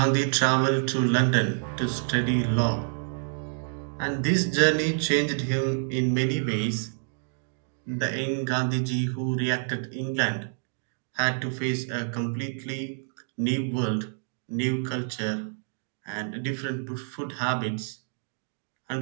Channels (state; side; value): silent; left; digital silence